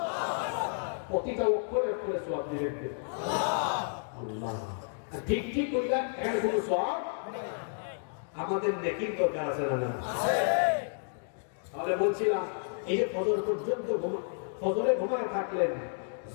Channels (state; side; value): silent; right; digital silence